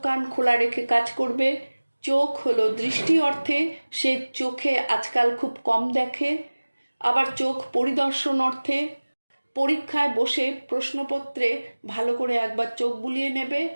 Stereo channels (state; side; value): inverted; both; correlation -1.00